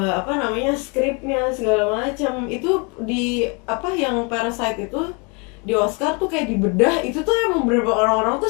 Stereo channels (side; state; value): right; quieter; 32.5 dB